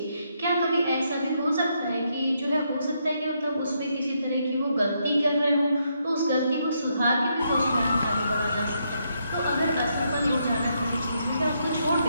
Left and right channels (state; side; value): inverted; both; correlation -0.77